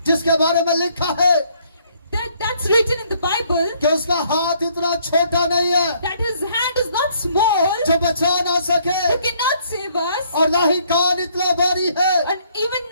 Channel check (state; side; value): inverted; both; correlation -0.65